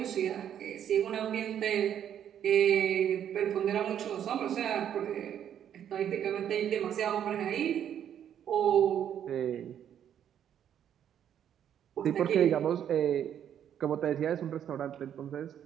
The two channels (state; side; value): quieter; left; 9.6 dB